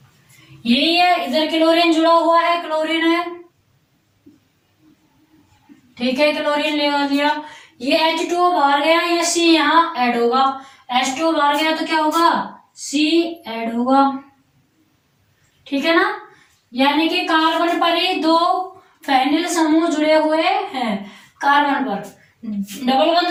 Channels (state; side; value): identical; both; correlation 1.00